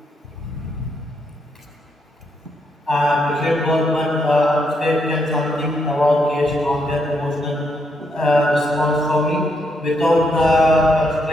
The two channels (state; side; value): normal; both; correlation 0.77